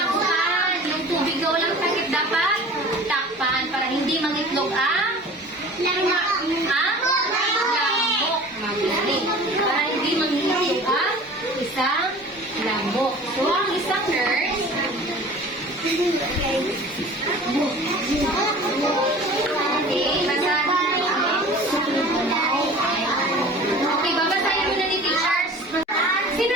Yung tubig na walang takip dapat takpan para hindi mangitlog ang lamok. Magaling. Para hindi mangitlog ang isang lamok. So, ang isang nurse okay, babasahin mo na ni teachers. Sino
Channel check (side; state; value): both; normal; correlation 0.42